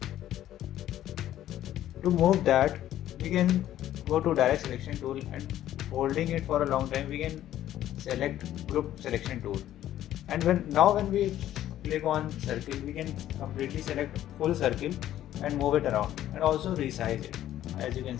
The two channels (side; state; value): right; quieter; 12.5 dB